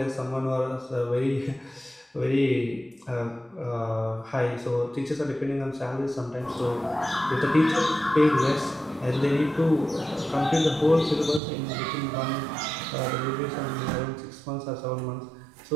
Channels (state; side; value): drops out; left; at 11.4 s